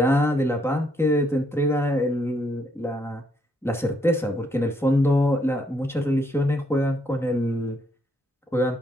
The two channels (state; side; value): normal; both; correlation 0.72